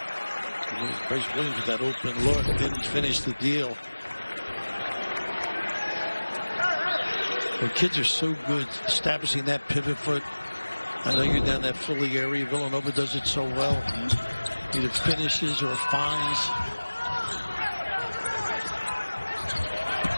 Bryce Williams with that open look didn't finish the deal. The kids are so good establishing that pivot foot. I know you're down that Philly area. Villanova does it so well. Either finishes or finds.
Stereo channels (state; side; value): inverted; both; correlation -1.00